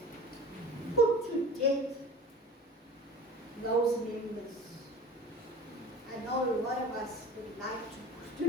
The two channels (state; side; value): normal; both; correlation 0.40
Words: Put to death those members. I know a lot of us would like to put